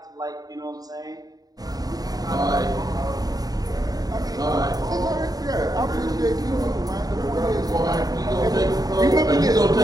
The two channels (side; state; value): left; late; 0.18 ms